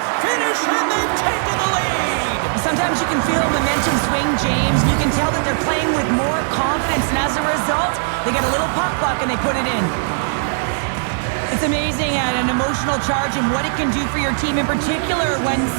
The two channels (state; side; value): silent; left; 67 dB below the other